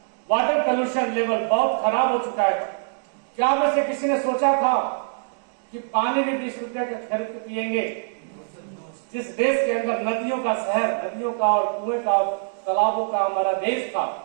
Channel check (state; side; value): silent; left; digital silence